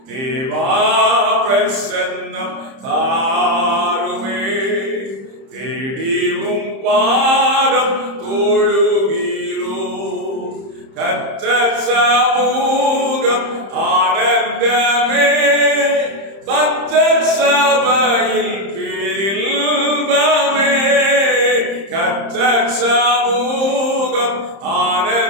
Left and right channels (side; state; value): left; late; 30 ms